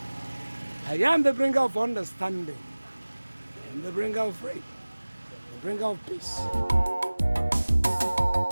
I am the bringer of understanding. I am the bringer of rain, the bringer of peace.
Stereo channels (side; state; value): both; inverted; correlation -1.00